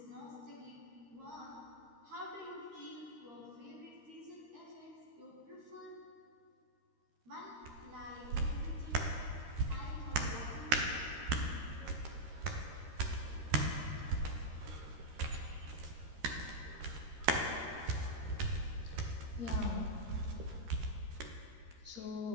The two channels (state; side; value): late; left; 13 ms